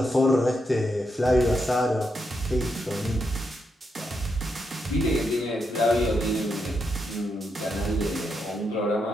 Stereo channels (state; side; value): normal; both; correlation 0.82